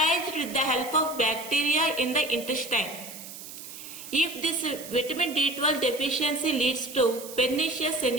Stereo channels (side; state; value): right; noise; hiss, 13 dB below the sound